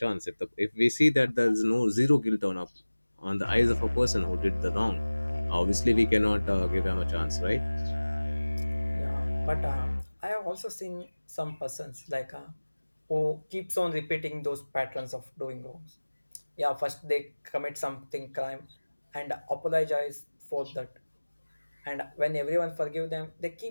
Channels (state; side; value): inverted; both; correlation -1.00